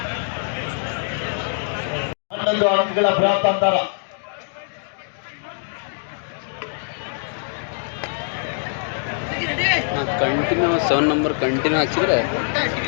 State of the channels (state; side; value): silent; right; digital silence